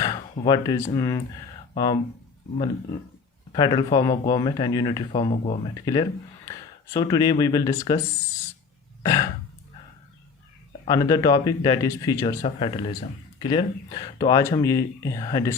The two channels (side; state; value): right; quieter; 5.1 dB